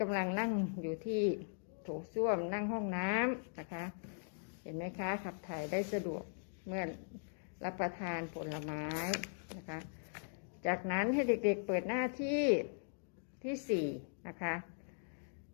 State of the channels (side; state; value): right; silent; digital silence